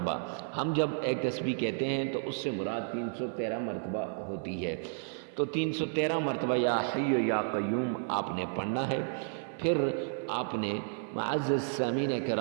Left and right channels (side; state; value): left; silent; 56 dB below the other